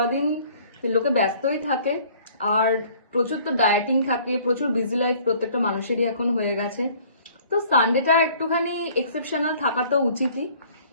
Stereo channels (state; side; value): inverted; both; correlation -0.54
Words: দিন লোকে ব্যস্তই থাকে, আর প্রচুর তো ডায়েটিং থাকে, প্রচুর বিজি লাইফ প্রত্যেকটা মানুষেরই এখন হয়ে গেছে। তো সানডেটা একটুখানি এক্সেপশনাল থাকা তো উচিতই।